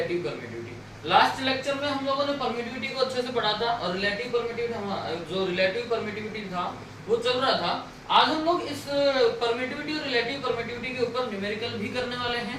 permittivity. Last lecture में हम लोगों ने परमिटिविटी को अच्छे से पढ़ा था और रिलेटिव परमिटिविटी, जो रिलेटिव परमिटिविटी था वो चल रहा था। आज हम लोग इस परमिटिविटी और रिलेटिव परमिटिविटी के ऊपर न्यूमेरिकल भी करने वाले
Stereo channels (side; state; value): both; identical; correlation 1.00